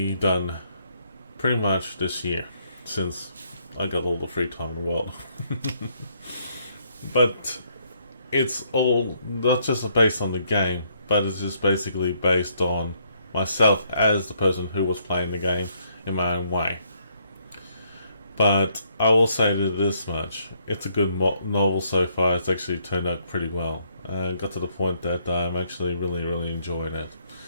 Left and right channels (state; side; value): inverted; both; correlation -0.71